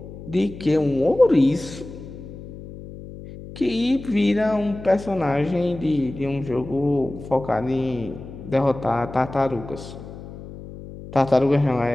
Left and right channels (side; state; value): left; noise; hum, 14 dB below the sound